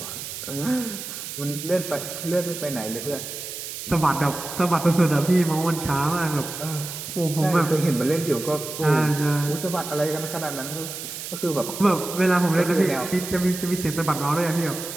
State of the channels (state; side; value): noise; right; hiss, 8 dB below the sound